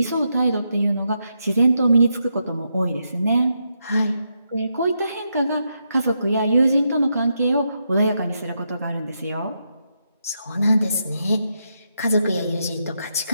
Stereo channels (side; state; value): both; inverted; correlation -0.82